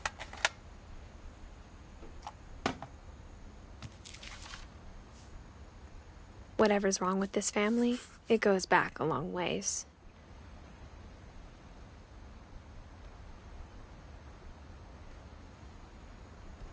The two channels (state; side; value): identical; both; correlation 1.00